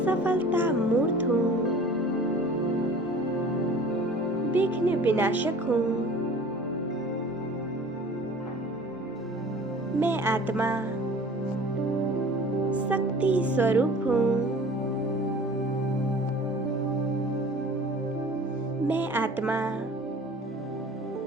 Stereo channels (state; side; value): normal; both; correlation 0.45